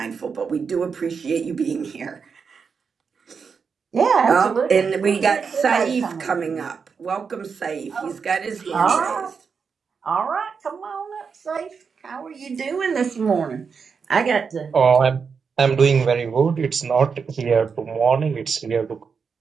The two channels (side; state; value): left; quieter; 5.8 dB